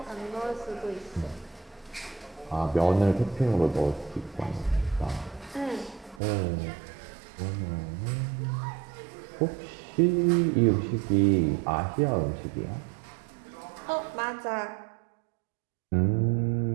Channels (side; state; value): left; drops out; at 6.2 s